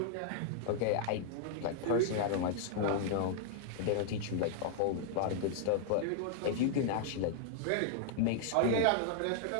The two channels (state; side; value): different; both; correlation -0.01